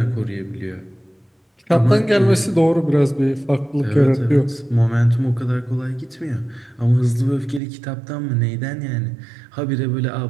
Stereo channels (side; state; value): left; drops out; at 7.6 s